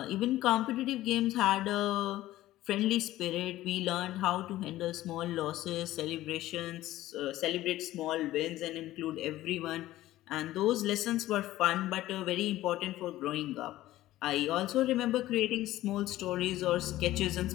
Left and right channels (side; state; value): right; quieter; 15.4 dB